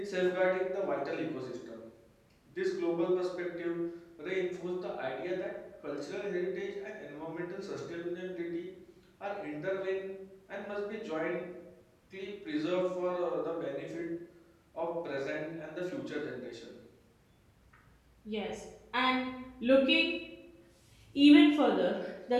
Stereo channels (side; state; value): both; identical; correlation 1.00